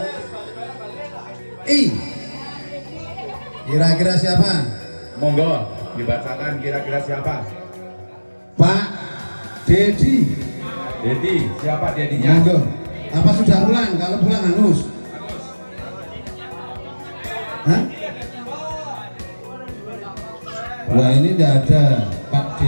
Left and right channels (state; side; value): inverted; both; correlation -1.00